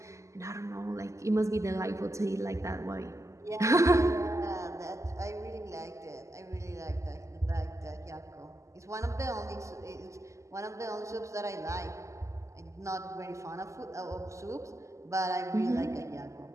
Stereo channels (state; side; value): late; left; 0.15 ms